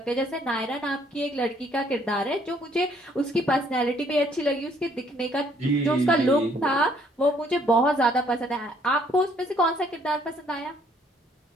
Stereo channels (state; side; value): normal; both; correlation 0.64